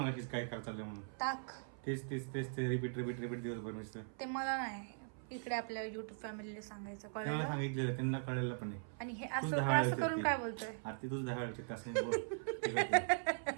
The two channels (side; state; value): left; silent; 51 dB below the other